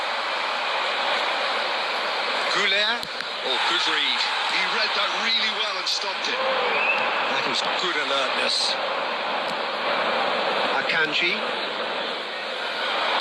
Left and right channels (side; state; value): both; identical; correlation 1.00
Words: Goulet. Oh, good read. He read that really well and stopped it. That is good alertness. Akanji.